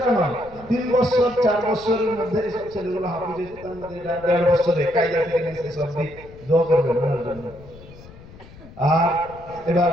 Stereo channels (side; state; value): left; noise; rumble, 20 dB below the sound